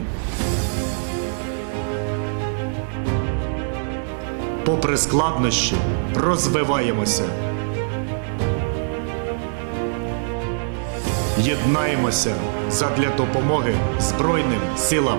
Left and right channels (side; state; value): left; silent; digital silence